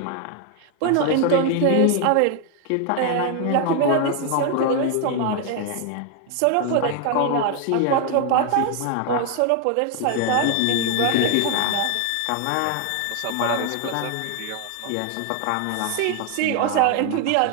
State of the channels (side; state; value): both; different; correlation 0.01